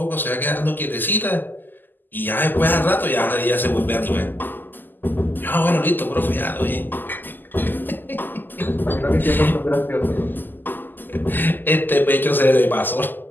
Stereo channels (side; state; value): right; late; 0.090 ms